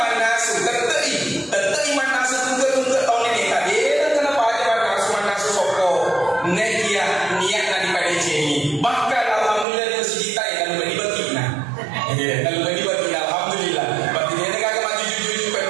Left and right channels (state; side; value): drops out; left; at 9.7 s